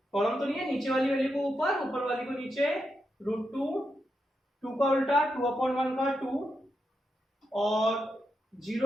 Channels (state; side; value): normal; both; correlation 0.85